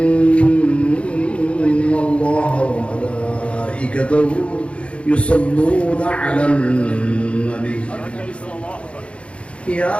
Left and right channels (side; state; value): right; late; 0.060 ms